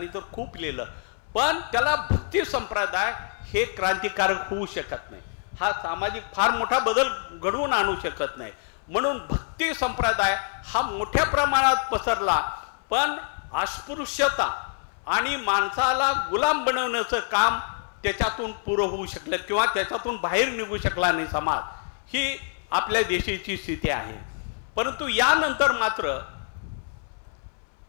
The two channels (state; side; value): silent; right; 61 dB below the other